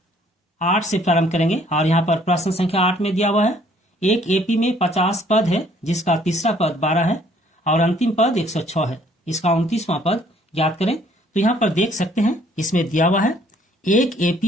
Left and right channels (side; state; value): both; normal; correlation 0.61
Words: 8 से प्रारंभ करेंगे। और यहाँ पर प्रश्न संख्या 8 में दिया हुआ है, एक एपी में 50 पद है जिसका तीसरा पद 12 है और अंतिम पद 106 है। इसका 29वां पद ज्ञात करें। तो यहाँ पर देख सकते हैं, इसमें दिया हुआ है एक